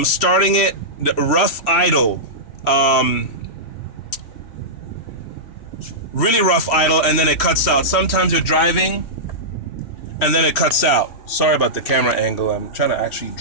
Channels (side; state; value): right; late; 3.1 ms